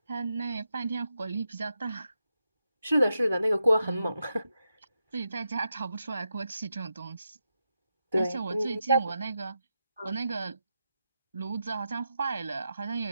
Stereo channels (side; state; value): both; inverted; correlation -0.87